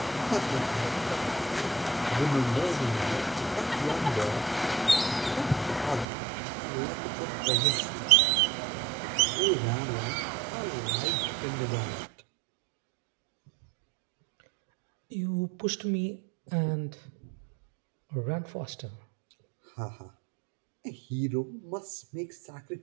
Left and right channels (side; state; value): left; drops out; at 6.1 s